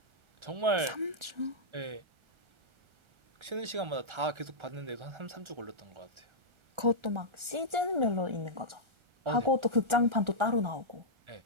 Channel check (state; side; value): late; left; 1.4 ms